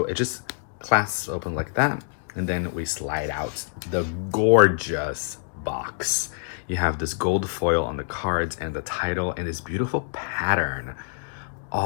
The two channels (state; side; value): silent; right; digital silence